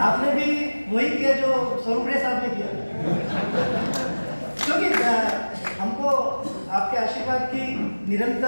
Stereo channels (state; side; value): inverted; both; correlation -1.00